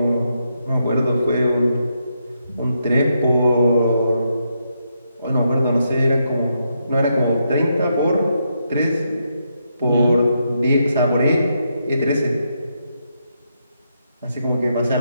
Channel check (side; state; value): both; inverted; correlation -0.80